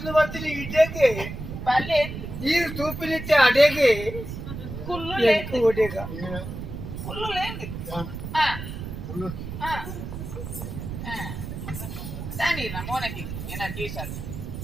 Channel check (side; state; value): right; noise; rumble, 8 dB below the sound